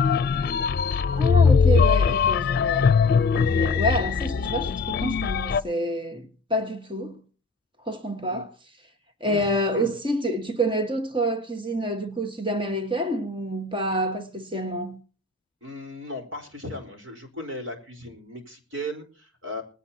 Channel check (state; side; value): quieter; right; 3.3 dB